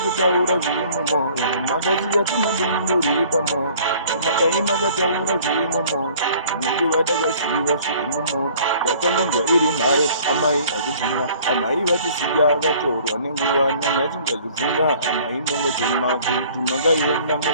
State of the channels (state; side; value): inverted; both; correlation -0.52